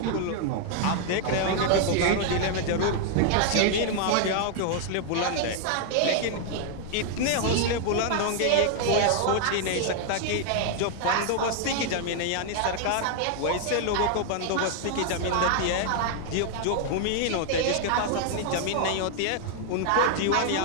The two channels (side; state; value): both; different; correlation 0.00